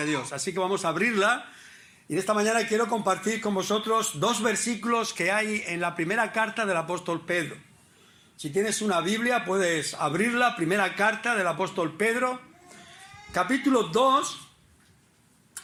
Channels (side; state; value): both; identical; correlation 1.00